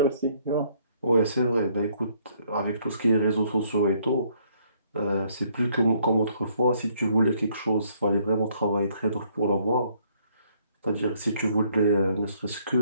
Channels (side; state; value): both; inverted; correlation -0.67